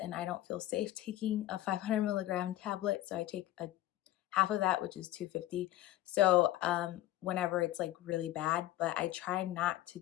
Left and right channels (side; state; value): right; quieter; 14.7 dB